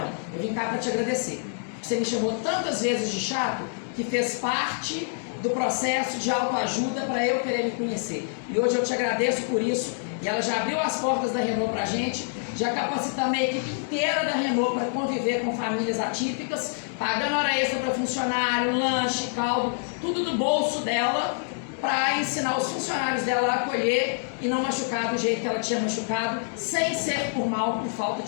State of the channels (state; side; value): silent; right; digital silence